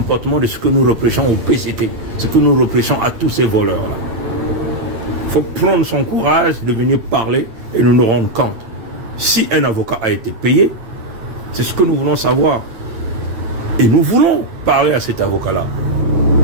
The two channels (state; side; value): late; left; 8.9 ms